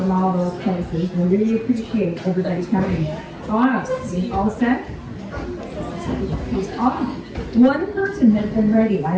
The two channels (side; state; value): both; identical; correlation 1.00